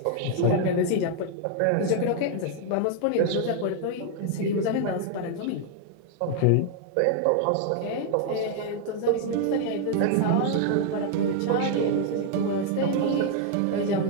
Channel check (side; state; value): both; different; correlation 0.00